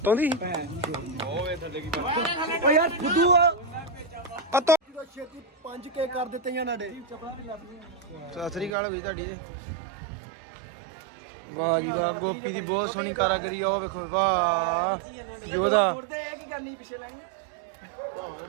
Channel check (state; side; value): drops out; left; at 8.7 s